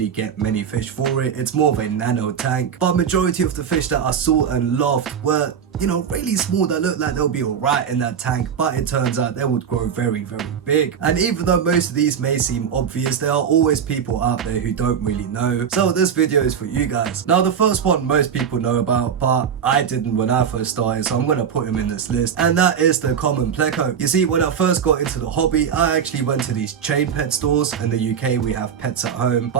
get many fish for it. It's more of a nano tank, but majority of the fish that I saw and loved were, you know, really small that looked like they'll be alright in that tank, but it turns out they would grow very big. And even though most of these may seem obvious, there are always people out there who don't really know. So this video is for you guys. Now the first one most people know about, but I didn't when I first started, so I'm gonna put him in this list, and that is the common pleco. You see, when I first got into the hobby, I actually went to these chain pet stores. In the UK we have Pets at Home, but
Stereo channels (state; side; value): quieter; left; 7.7 dB